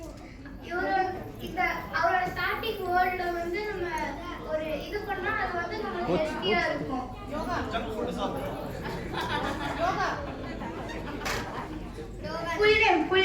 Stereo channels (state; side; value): identical; both; correlation 1.00